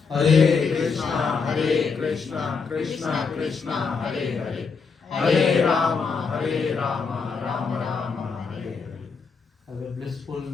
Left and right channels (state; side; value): quieter; right; 5.2 dB